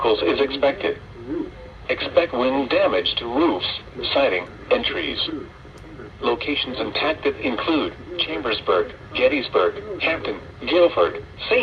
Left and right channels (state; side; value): identical; both; correlation 1.00